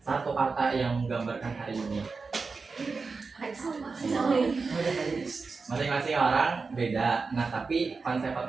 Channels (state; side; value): quieter; left; 4.4 dB